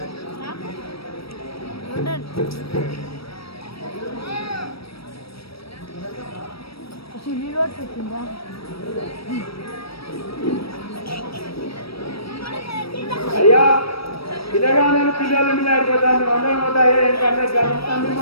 అయ్యా పిల్లగానే పిల్లలు మీద ఆడిపోతాను అందరం పోతాయి ఎందుకంటే తొమ్మిది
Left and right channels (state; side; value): late; right; 0.76 ms